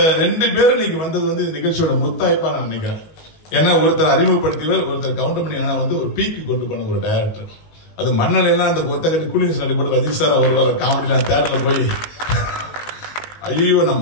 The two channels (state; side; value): late; right; 19 ms